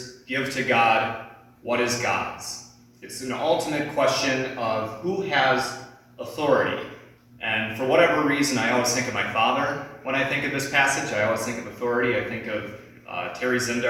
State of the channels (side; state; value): both; identical; correlation 1.00